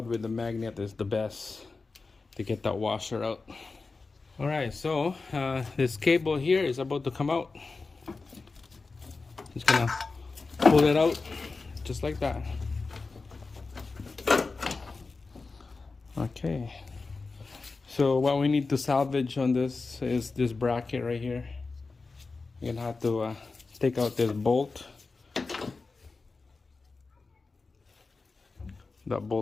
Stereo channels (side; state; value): right; quieter; 4.0 dB